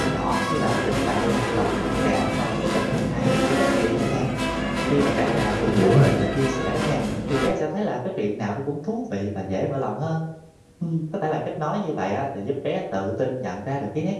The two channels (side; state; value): both; identical; correlation 1.00